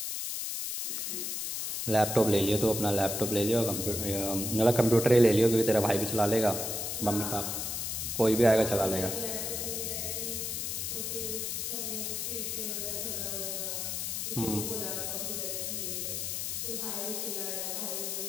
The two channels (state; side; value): noise; left; hiss, 2 dB below the sound